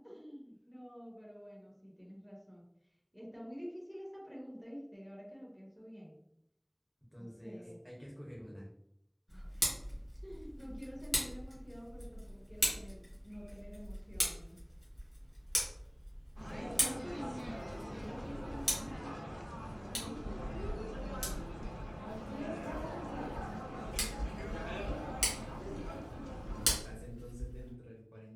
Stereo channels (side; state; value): both; identical; correlation 1.00